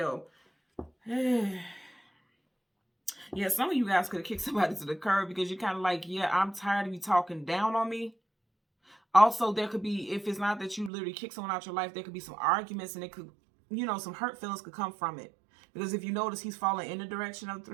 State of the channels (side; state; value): left; drops out; at 10.9 s